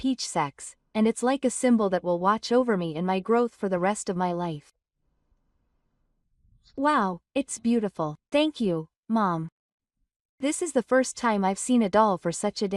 sex, and it's like a symbol that will watch over me in my growth for the rest of my life. Wow, it's beautiful. Thank you, Mom. This is the first time I've seen a doll for such a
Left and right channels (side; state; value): both; identical; correlation 1.00